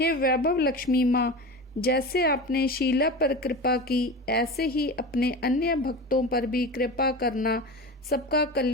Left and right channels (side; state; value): both; normal; correlation 0.29